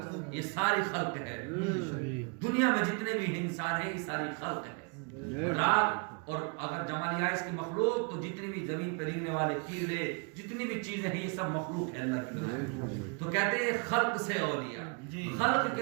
یہ ساری خلق ہے، دنیا میں جتنے بھی انسان ہیں یہ ساری خلق ہے، رات اور اگر جمع لیا اس کی مخلوق تو جتنی بھی زمین پہ رہنے والے کیڑے جتنی بھی چیزیں ہیں یہ سب مخلوق ہے اللہ کی طرف۔ تو کہتے ہیں خلق سے اولیاء، خلق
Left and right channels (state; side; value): quieter; left; 36.1 dB